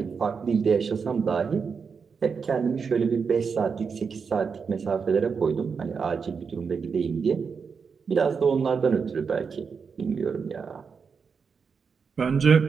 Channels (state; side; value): quieter; left; 5.7 dB